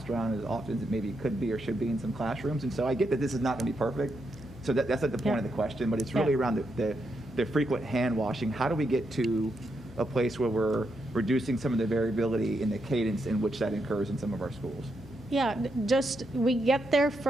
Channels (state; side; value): normal; both; correlation 0.82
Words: around as often as it maybe could be or should be in some classrooms. And so I get that this is not going to be perfect. So that's not the point of the question, but it's really around the frequent hand washing. How do we get to a place where we're reducing some of the variability in the cadence in which that occurs in some of our schools? Yeah, just we get there